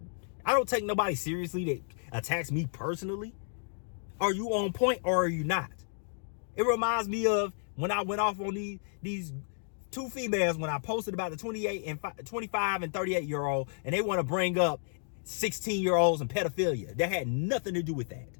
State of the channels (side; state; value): right; silent; digital silence